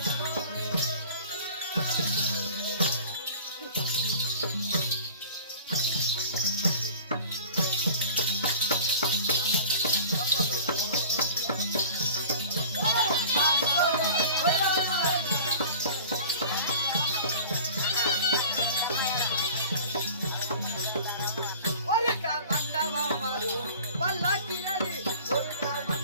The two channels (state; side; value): inverted; both; correlation -0.42